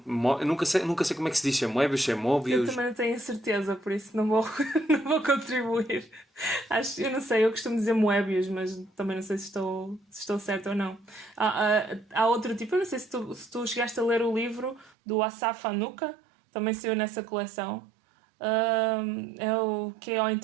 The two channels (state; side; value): drops out; left; at 14.9 s